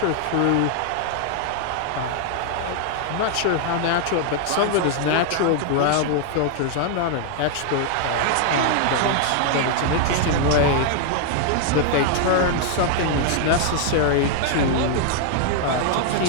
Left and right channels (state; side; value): different; both; correlation 0.00